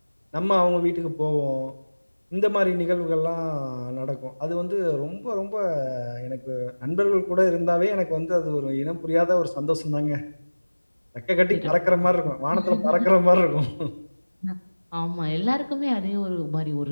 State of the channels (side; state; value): both; inverted; correlation -1.00